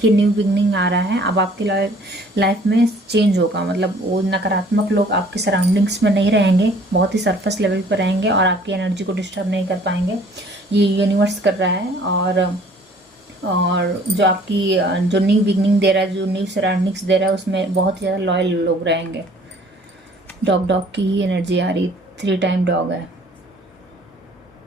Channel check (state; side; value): normal; both; correlation 0.55